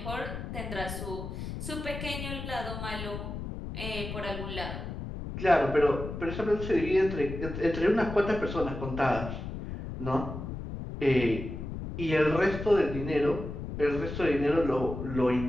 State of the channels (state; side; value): noise; left; rumble, 7 dB below the sound